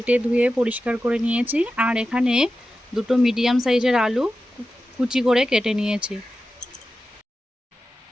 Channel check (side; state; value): both; normal; correlation 0.92